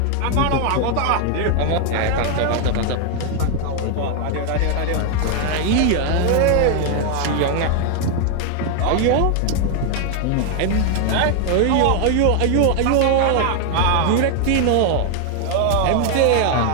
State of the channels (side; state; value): both; different; correlation 0.00